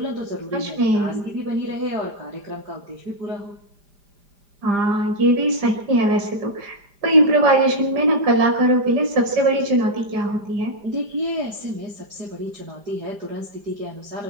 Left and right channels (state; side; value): late; left; 5.0 ms